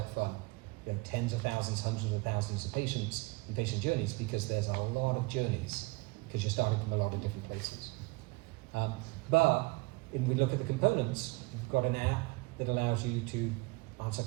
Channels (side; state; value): left; quieter; 25.6 dB